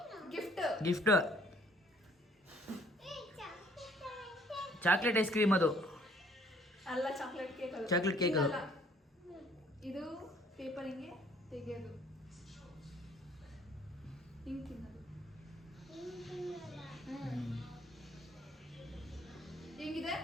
ಗಿಫ್ಟ್ ಚಾಕ್ಲೇಟ್ ಐಸ್ ಕ್ರೀಮ್ ಅದು ಅಲ್ಲ ಚಾಕ್ಲೇಟ್ ಕೇಕ್ ಚಾಕ್ಲೇಟ್ ಕೇಕ್ ಅದು ಇದು ಪೇಪರ್ ಹಿಂಗೆ ತೆಗೆಯೋದು ಹಿಂಗೆ ತಿನ್ನೋದು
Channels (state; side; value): normal; both; correlation 0.60